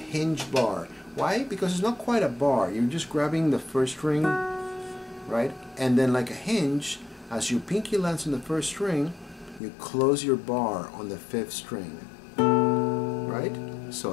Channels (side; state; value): right; drops out; at 9.6 s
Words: bar. Why? Because it's not quite a bar. You're just grabbing the 1st string, right? And then like a hinge, as your pinky lands on the 1st string, you close your bar on the 5th string, right? So